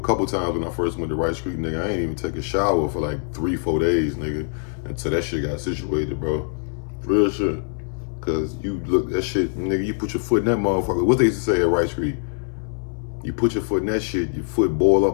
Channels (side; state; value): right; silent; 63 dB below the other